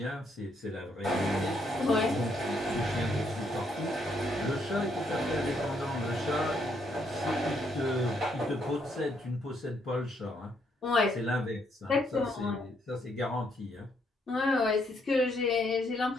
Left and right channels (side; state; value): both; normal; correlation 0.73